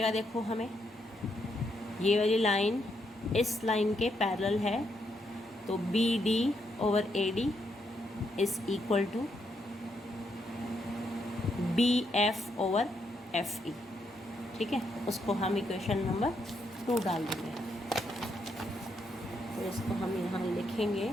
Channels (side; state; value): both; normal; correlation 0.78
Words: देखो हमें ये वाली लाइन इस लाइन के पैरेलल है तो BD over AD is equal to BF over FE। ठीक है, उसको हम इक्वेशन नंबर 2 डाल देंगे। तो इसको हम यहाँ लिखेंगे